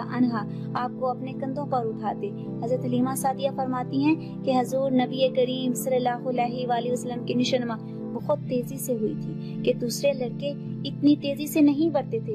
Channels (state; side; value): identical; both; correlation 1.00